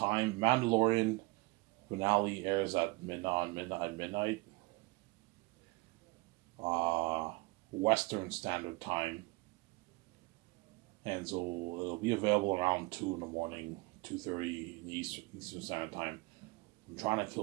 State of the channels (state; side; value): quieter; left; 25.0 dB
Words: Mandalorian finale airs at midnight. Western Standard Time. And so it'll be available around 2 in the morning, 2:30 Eastern Standard Time. I'm trying to